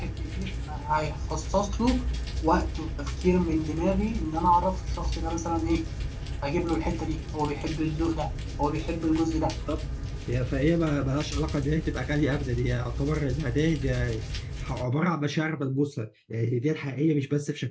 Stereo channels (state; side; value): identical; both; correlation 1.00